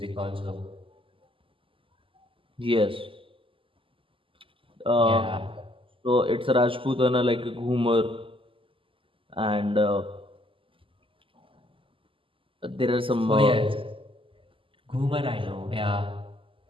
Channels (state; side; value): late; left; 0.25 ms